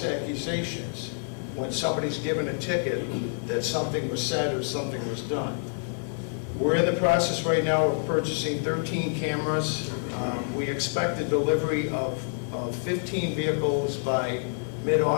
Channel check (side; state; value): right; silent; 57 dB below the other